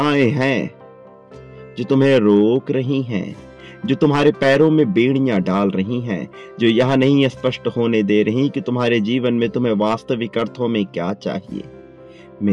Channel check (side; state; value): both; identical; correlation 1.00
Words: हैं जो तुम्हें रोक रही हैं, जो तुम्हारे पैरों में बेड़ियां डाल रही हैं, जो यह नहीं स्पष्ट होने दे रही कि तुम्हारे जीवन में तुम्हें वास्तविक अर्थों में क्या चाहिए।